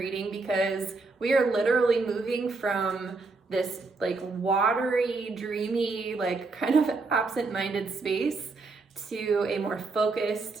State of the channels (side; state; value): left; quieter; 3.8 dB